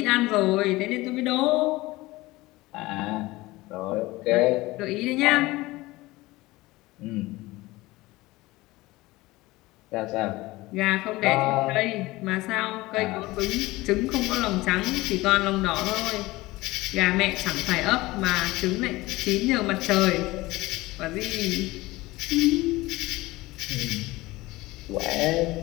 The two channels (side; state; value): right; quieter; 19.9 dB